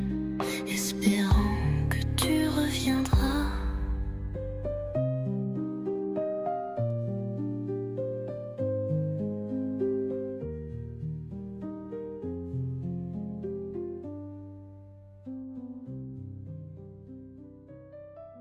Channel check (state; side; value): identical; both; correlation 1.00